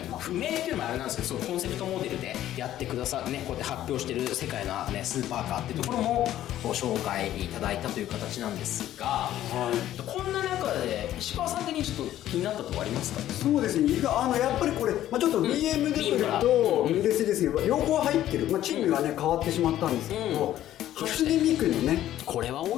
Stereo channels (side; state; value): right; quieter; 12.8 dB